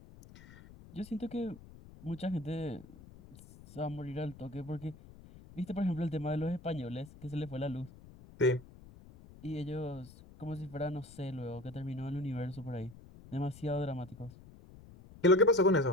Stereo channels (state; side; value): noise; left; rumble, 19 dB below the sound